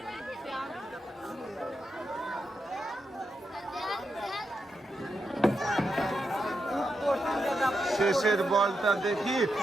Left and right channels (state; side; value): normal; both; correlation 0.85